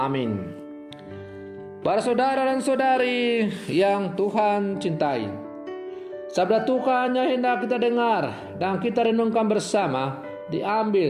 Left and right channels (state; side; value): identical; both; correlation 1.00